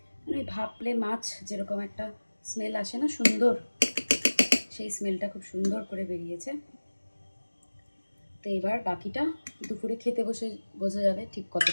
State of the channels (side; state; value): both; inverted; correlation -1.00